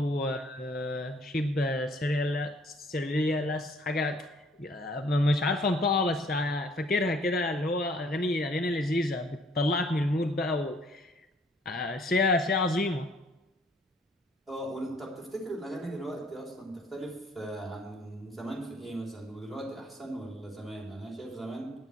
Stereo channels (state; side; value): normal; both; correlation 0.61